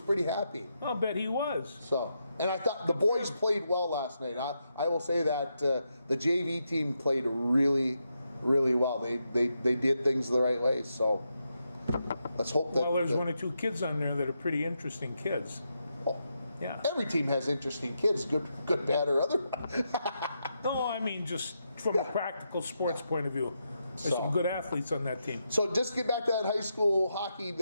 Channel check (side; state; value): both; inverted; correlation -0.84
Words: happy. I'll bet he was. So, and I thought the boys played well last night. I will say that the JV team played really, really well. They did things the right way. So let's hope that. Well, there's 1 or 2 kids on there that are pretty interesting kids. Oh, Yeah. every team has interesting kids, good, bad, or otherwise. No, I mean just from a practical sports point of view. There's So- some good athletes on that team. So just get back to that high school hockey